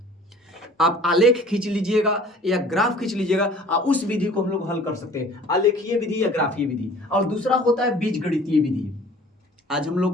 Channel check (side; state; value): both; normal; correlation 0.48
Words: आप आलेख खींच लीजिएगा या ग्राफ खींच लीजिएगा और उस विधि को हम लोग हल कर सकते हैं, आलेखीय विधि या ग्राफीय विधि। और दूसरा होता है बीजगणितीय विधि। आज हम लोग